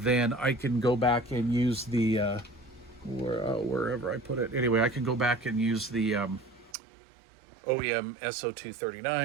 I can go back and use the wherever I put it. Anyway, I can go back and use the OEM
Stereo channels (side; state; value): left; drops out; at 6.8 s